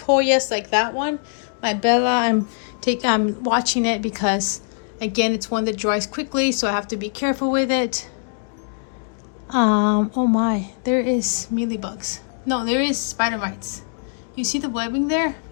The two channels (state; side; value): silent; right; digital silence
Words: Hoyas like that one. My Bella, I'm watching it because, again, it's one that dries quickly, so I have to be careful with it. Oh my, there is mealybugs. No, there is spider mites. You see the webbing there?